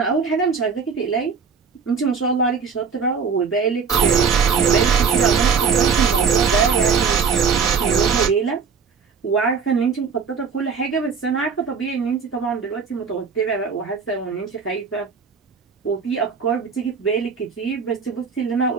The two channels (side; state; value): left; quieter; 5.8 dB